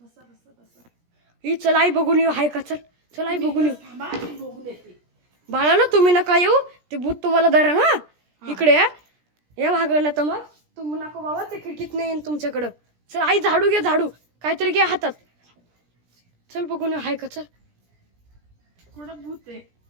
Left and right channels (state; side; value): late; left; 17 ms